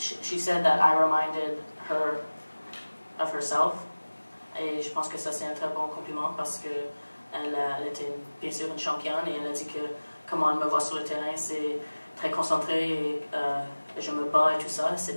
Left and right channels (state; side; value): inverted; both; correlation -1.00